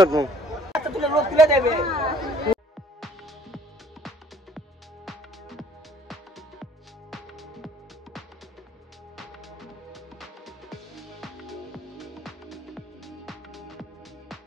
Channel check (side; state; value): both; normal; correlation 0.58